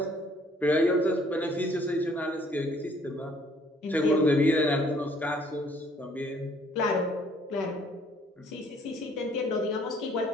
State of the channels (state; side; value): normal; both; correlation 0.61